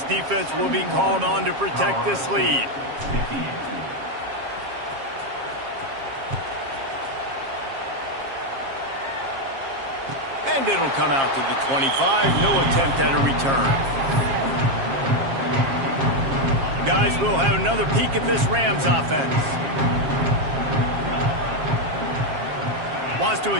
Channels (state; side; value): late; left; 7.4 ms